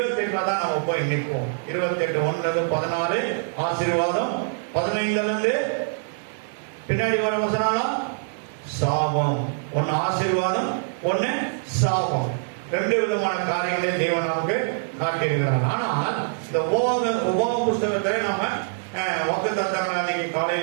தான் நம்ம போய் நிற்போம். 28 1-14 ஆசீர்வாதம், 15 பின்னாடி வர வசனம் சாபம். ஒன்னு ஆசீர்வாதம், ஒன்னு சாபம். ரெண்டு விதமான காரியங்களை தேவன் நமக்கு காட்டியிருக்கிறார். ஆனால் இந்த உபாக புஸ்தகத்துல நம்ம வாக்குத்தத்தங்கள் அன்னைக்கு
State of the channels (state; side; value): silent; left; digital silence